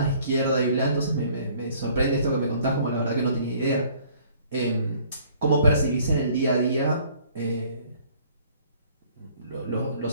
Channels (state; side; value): inverted; both; correlation -0.57